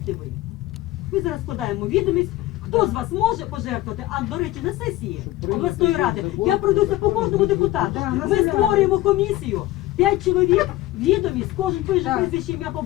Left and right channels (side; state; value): right; quieter; 16.5 dB